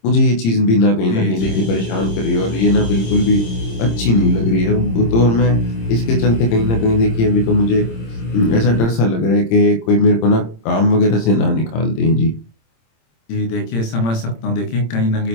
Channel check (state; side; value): late; right; 26 ms